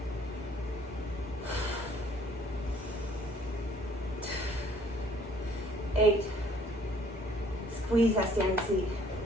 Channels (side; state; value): both; normal; correlation 0.59